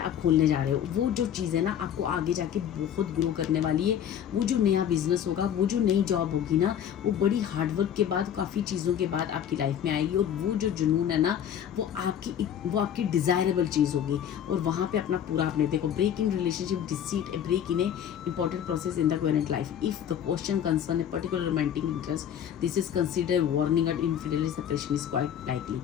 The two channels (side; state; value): right; quieter; 9.5 dB